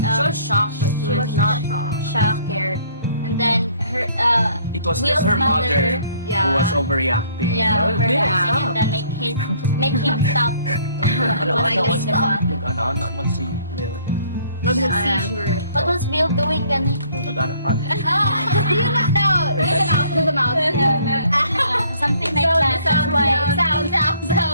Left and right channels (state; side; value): inverted; both; correlation -0.59